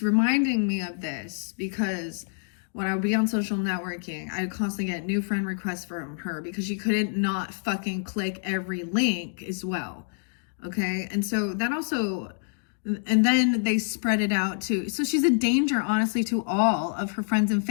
me of this because when I would be on social networking, I would constantly get new friend requests from her because she couldn't not fucking click every link as well. Okay. And so that also, and then they spread it out to, so she's a danger, honestly, to all of her friends and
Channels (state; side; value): silent; right; 60 dB below the other